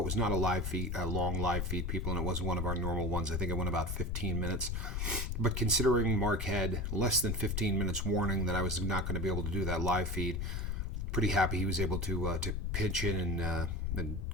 was not a live feed, a long live feed, people, and it was one of our normal ones. I think it went about 15 minutes. But considering Mark had less than 15 minutes warning that I was not going to be able to do that live feed, pretty happy he was able to pitch in and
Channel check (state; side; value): noise; left; rumble, 1 dB below the sound